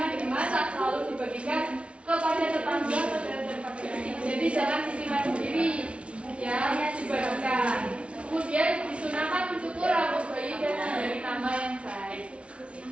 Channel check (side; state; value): left; late; 0.060 ms